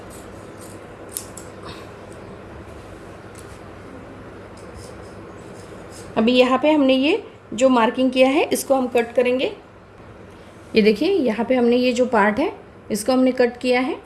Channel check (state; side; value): identical; both; correlation 1.00